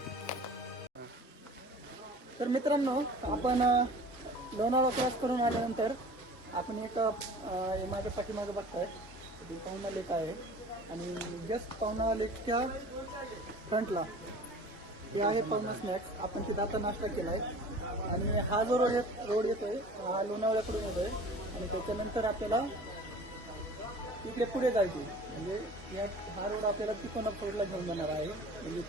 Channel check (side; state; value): both; normal; correlation 0.43